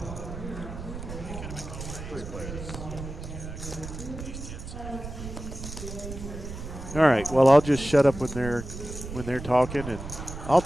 All right. Well, I'll just shut up when they're talking, and I'll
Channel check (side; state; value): right; noise; rumble, 9 dB below the sound